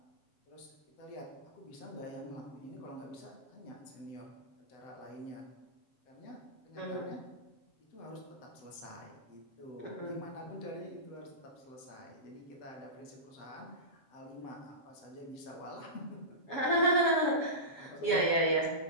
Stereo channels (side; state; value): right; late; 7.2 ms